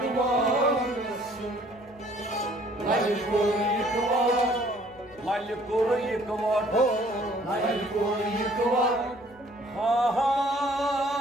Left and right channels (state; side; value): noise; left; hum, 27 dB below the sound